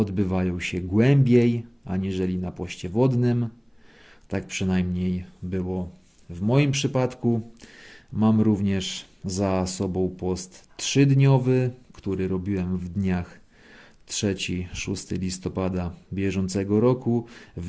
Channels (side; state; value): both; identical; correlation 1.00